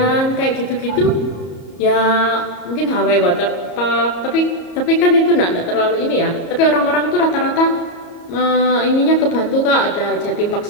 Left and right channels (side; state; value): right; late; 34 ms